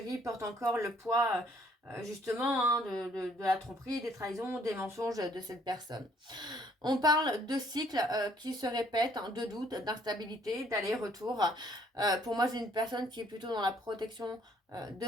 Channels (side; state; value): both; normal; correlation 0.63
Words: porte encore le poids justement hein, de la tromperie, des trahisons, des mensonges de cette personne. On parle de cycles qui se répètent, hein, de doutes, d'instabilité, d'aller-retour. Pour moi, c'est une personne qui est plutôt dans la protection